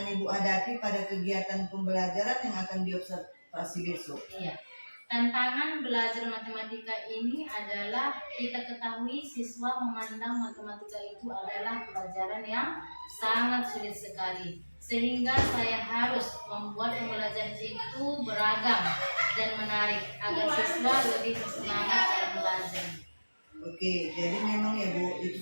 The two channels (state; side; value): inverted; both; correlation -1.00